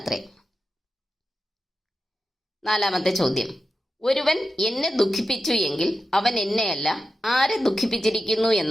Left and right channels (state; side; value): normal; both; correlation 0.90